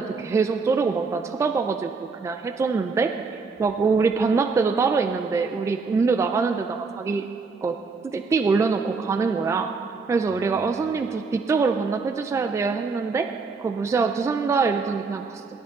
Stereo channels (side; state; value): left; quieter; 4.5 dB